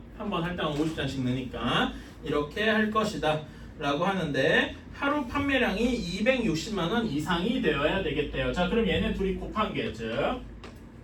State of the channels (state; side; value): identical; both; correlation 1.00